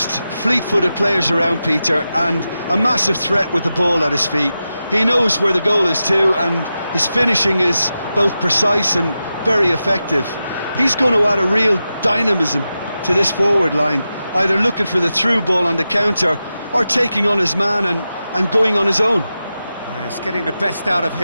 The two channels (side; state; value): both; inverted; correlation -0.91